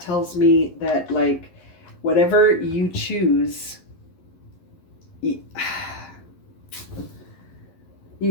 tells me that, like, whatever you choose, you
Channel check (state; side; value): late; right; 11 ms